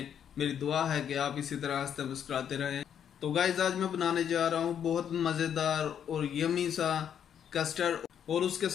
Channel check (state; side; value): quieter; right; 8.8 dB